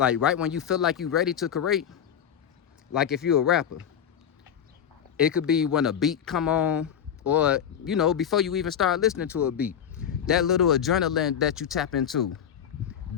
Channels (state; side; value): quieter; right; 8.8 dB